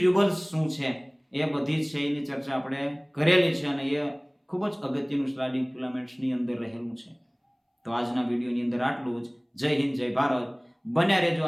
શું છે, એ બધી છે એની ચર્ચા આપણે કરેલી છે અને એ ખૂબ જ અગત્યનું સ્લાઇડિંગ ફિલામેન્ટ્સની અંદર રહેલું છે. તો આજના વિડીયોની અંદર આટલું જ. જય હિન્દ, જય ભારત. બન્યા રહેજો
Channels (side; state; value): both; identical; correlation 1.00